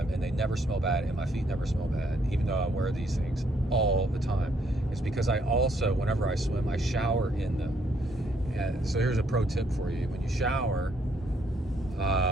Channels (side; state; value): both; normal; correlation 0.70